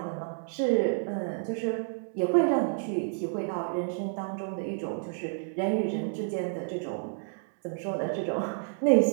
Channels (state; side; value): silent; left; digital silence